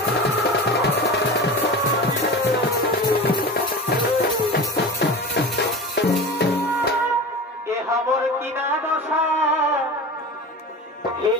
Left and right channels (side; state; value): both; normal; correlation 0.31